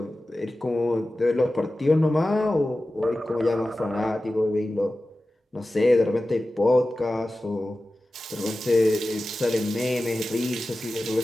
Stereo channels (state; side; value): normal; both; correlation 0.95